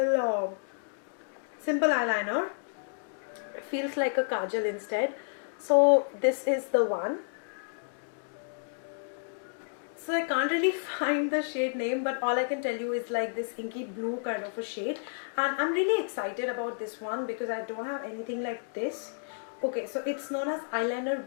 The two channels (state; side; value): silent; right; digital silence